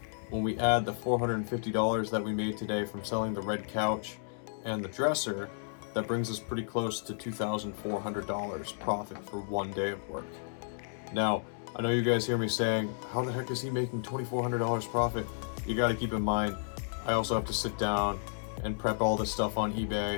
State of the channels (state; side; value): silent; right; digital silence